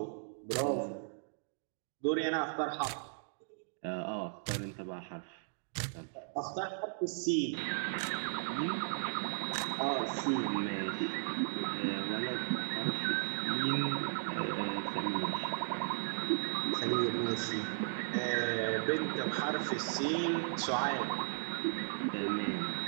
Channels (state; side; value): silent; left; digital silence